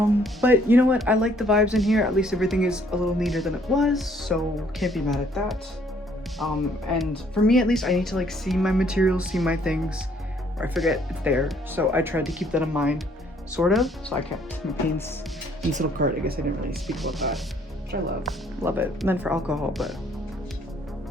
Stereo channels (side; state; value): both; normal; correlation 0.63